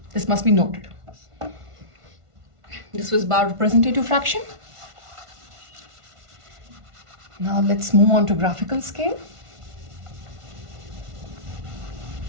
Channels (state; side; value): late; left; 1.5 ms